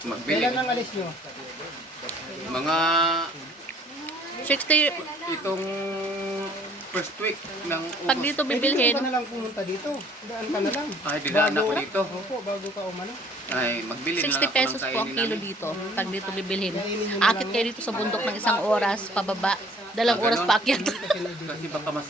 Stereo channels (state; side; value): normal; both; correlation 0.56